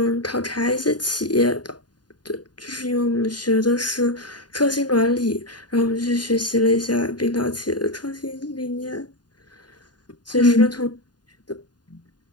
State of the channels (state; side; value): late; right; 0.70 ms